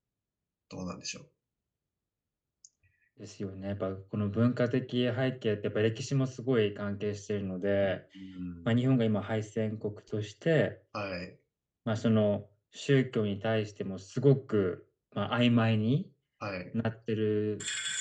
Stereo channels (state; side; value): identical; both; correlation 1.00